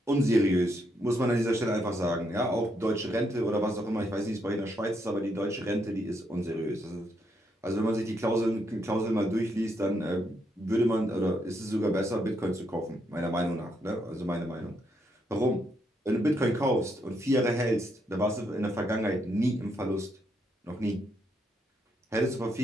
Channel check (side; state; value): both; normal; correlation 0.77